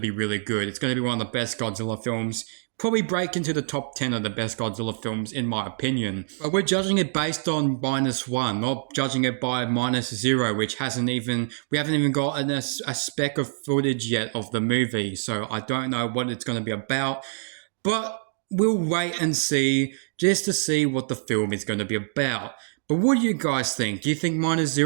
really good. It's going to be one of the best Godzilla films. Probably break into the top 10 of the best Godzilla films, in my opinion. But we're judging it based on -1, not judging it by -0, which we haven't even got a speck of footage yet of the movie. So I don't know what it's going to be about. But we'll wait and see, just to see what the film is going to be about. But what do you guys think? Do you think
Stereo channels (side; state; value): left; silent; digital silence